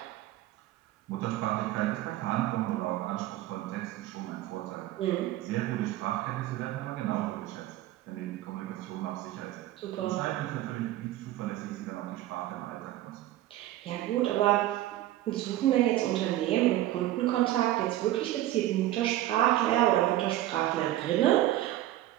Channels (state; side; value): quieter; left; 14.7 dB